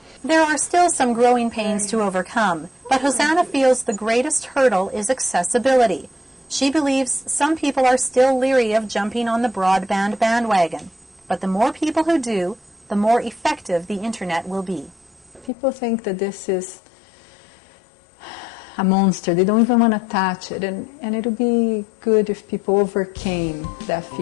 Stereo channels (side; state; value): right; drops out; at 15.5 s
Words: There are still some growing pains to overcome, but Hosanna feels the greatest hurdle is accessibility. She believes some people are still leery of jumping on the broadband bandwagon, but the more people who do, the more effective the internet will be. People think that this is a monster. They don't even want to touch it, and it would be good if people overcame that